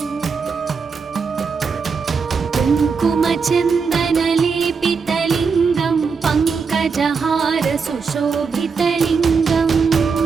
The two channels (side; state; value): left; quieter; 5.3 dB